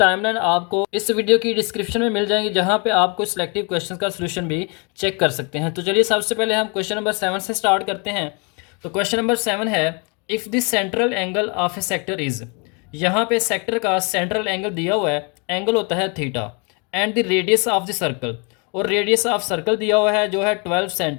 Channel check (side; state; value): right; quieter; 33.7 dB